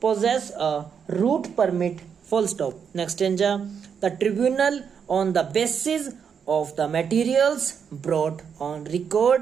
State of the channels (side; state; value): left; quieter; 7.0 dB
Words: a route permit, full stop. Next the tribunal on the basis of the materials brought on